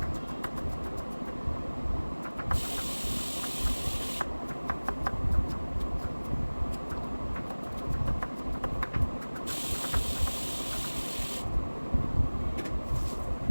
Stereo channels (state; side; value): inverted; both; correlation -1.00